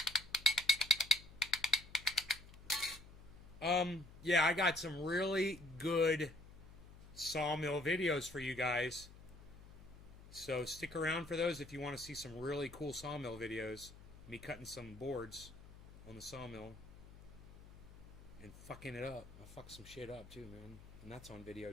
Yeah, I got some really good sawmill videos for you guys. So stick around for those if you want to see some really cool sawmill videos. Me cutting some boards on the sawmill. And fucking it up. I fuck some shit up too, man. And that's on video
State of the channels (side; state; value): left; noise; hum, 18 dB below the sound